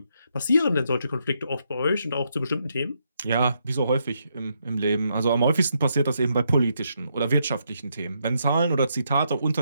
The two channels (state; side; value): inverted; both; correlation -0.78